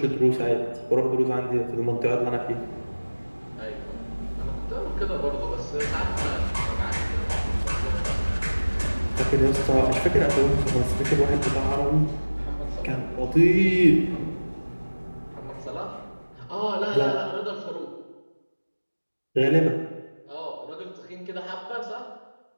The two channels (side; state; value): both; inverted; correlation -1.00